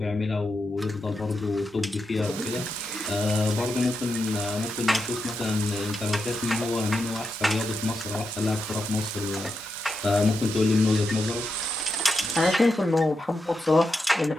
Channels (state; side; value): normal; both; correlation 0.85